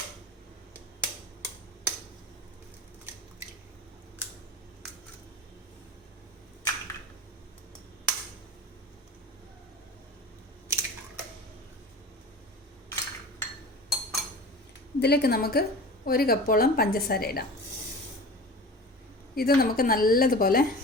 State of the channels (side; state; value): both; normal; correlation 0.35